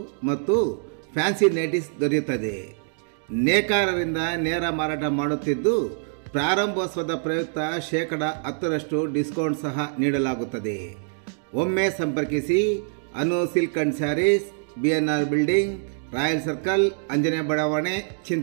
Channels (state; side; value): silent; left; digital silence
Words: ಮತ್ತು ಫ್ಯಾನ್ಸಿ ನೈಟೀಸ್ ದೊರೆಯುತ್ತದೆ. ನೇಕಾರರಿಂದ ನೇರ ಮಾರಾಟ ಮಾಡುತ್ತಿದ್ದು ಪ್ರಾರಂಭೋತ್ಸವದ ಪ್ರಯುಕ್ತ 10% ಡಿಸ್ಕೌಂಟ್ ಸಹ ನೀಡಲಾಗುತ್ತದೆ. ಒಮ್ಮೆ ಸಂಪರ್ಕಿಸಿ Anu silk and sarees, BNR building, royal circle, Anjane ಬಡಾವಣೆ,